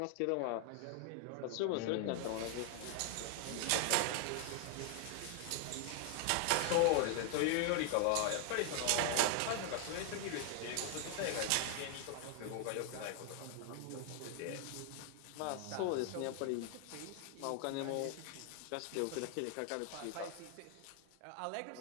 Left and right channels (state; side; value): different; both; correlation 0.00